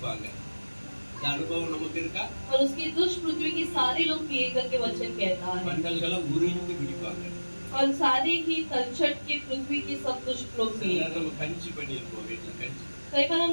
இந்த அனுபவம் நமக்கு இருக்கா? और उसकी दुष्ट पृथ्वी की सारे लोग पिए करके वचन कहता है। வண்டல்களை உறிஞ்சி குடிப்பாங்க. और सारे ही तलछट के पृथ्वी के सब दुष्ट लोग पिए। நம்ம கஞ்சி பண்ணிருப்போம் வீட்டுல கஞ்சி. कई बार हम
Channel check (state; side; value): inverted; both; correlation -1.00